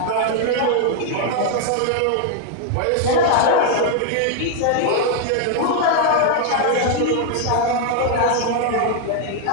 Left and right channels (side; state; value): both; different; correlation 0.00